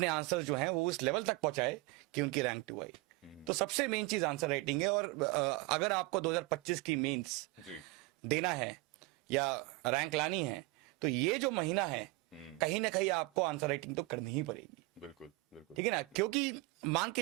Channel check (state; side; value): quieter; left; 22.5 dB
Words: आंसर्स जो हैं वो उस लेवल तक पहुंचाए कि उनकी रैंक 2 आई। तो सबसे मेन चीज आंसर राइटिंग है। और अगर आपको 2025 की मेंस देना है या रैंक लानी है तो ये जो महीना है कहीं ना कहीं आपको आंसर राइटिंग तो करनी ही पड़ेगी। बिल्कुल। ठीक है ना, क्योंकि मान